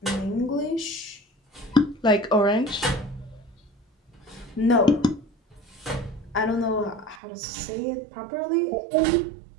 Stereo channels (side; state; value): left; drops out; at 7.2 s